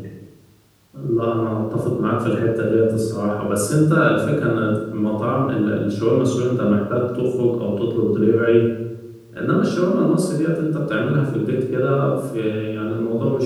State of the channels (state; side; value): identical; both; correlation 1.00